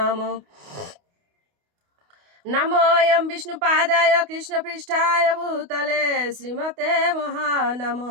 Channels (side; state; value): left; late; 28 ms